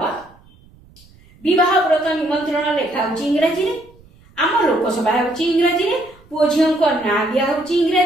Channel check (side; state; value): right; noise; rumble, 27 dB below the sound